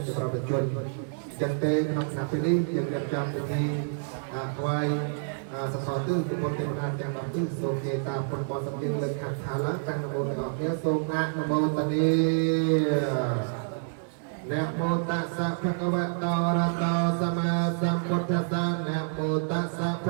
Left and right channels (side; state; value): left; silent; digital silence